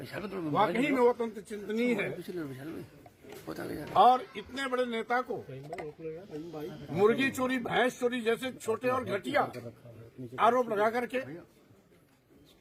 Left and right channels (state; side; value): identical; both; correlation 1.00